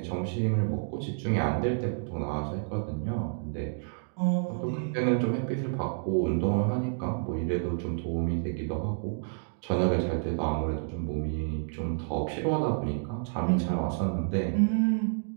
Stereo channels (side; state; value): left; silent; digital silence